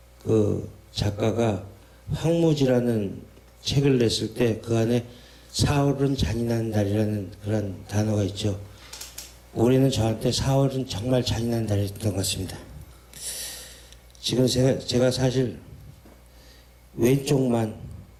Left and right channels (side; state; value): both; identical; correlation 1.00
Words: 그 작가가 황무지라는 책을 냈을 때 그 안에 4월은 잔인한 달이라는 그런 단어가 있죠. 올해는 저한테 4월은 정말 잔인한 달이었던 것 같습니다. 지금 제가 사실 왼쪽만